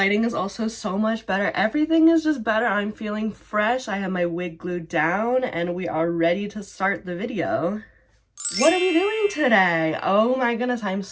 is also so much better. Everything is just better. I'm feeling fresh. I have my wig glued down and we are ready to start the video. What are we doing today? Oh my goodness, I'm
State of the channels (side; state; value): both; identical; correlation 1.00